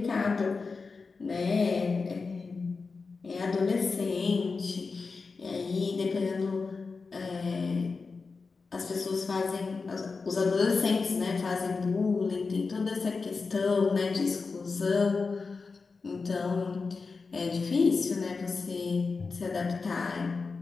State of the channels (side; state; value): right; quieter; 4.5 dB